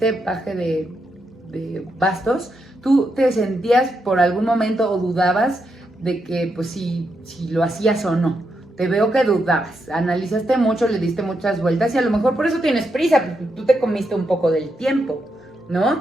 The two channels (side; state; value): both; normal; correlation 0.83